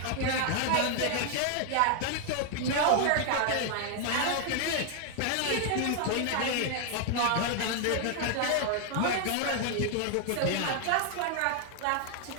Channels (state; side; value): different; both; correlation 0.00